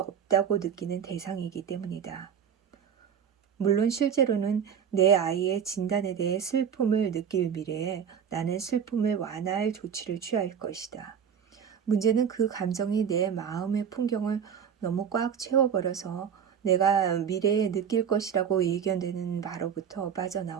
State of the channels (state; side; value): quieter; left; 7.9 dB